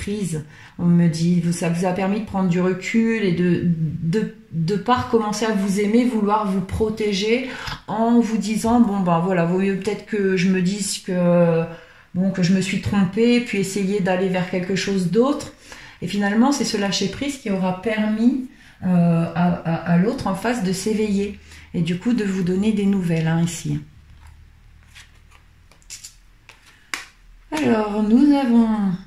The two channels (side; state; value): both; identical; correlation 1.00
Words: On me dit, ça vous a permis de prendre du recul et de pas recommencer à vous aimer, vouloir vous protéger en vous disant, bon ben voilà, vaut mieux peut-être que je me dise que, bon, que je me suis trompée, puis essayer d'aller vers quelque chose d'autre. Et finalement, c'est ce lâcher prise qui aura permis à l'autre en face de s'éveiller et du coup de vous donner des nouvelles hein, ici. Alors, nous avons